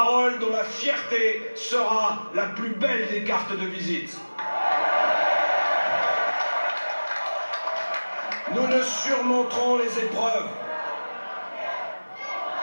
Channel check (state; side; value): inverted; both; correlation -1.00